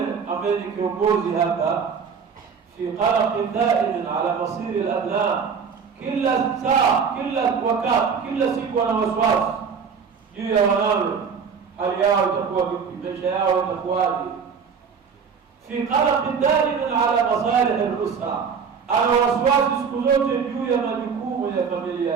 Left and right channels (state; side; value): quieter; left; 6.2 dB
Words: ambaye ni kiongozi hapa, fi qalaq daim ala masir al-abna, kila saa, kila wakati, kila siku ana wasiwasi juu ya wanawe, hali yao itakuwa vipi, maisha yao itakuwaje. Fi qalaq daim ala masalih al-usra, ana wasiwasi siku zote juu ya majukumu ya familia